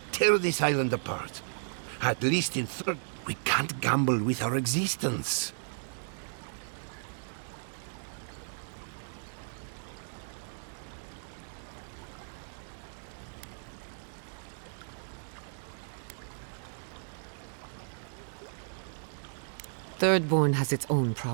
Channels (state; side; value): silent; left; digital silence